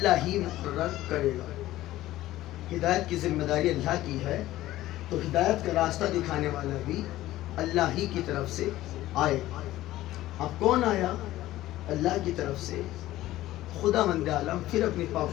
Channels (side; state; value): right; quieter; 15.5 dB